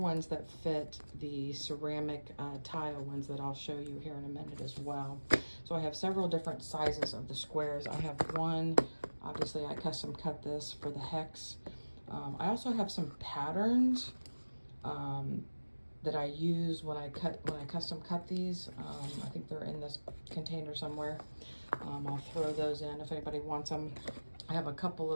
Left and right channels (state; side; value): inverted; both; correlation -1.00